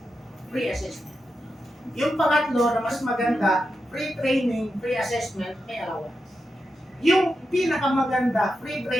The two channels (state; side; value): normal; both; correlation 0.87